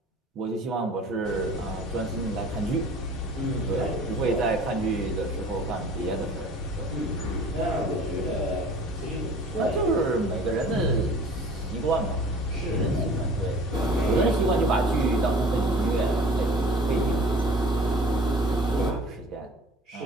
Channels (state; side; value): normal; both; correlation 0.46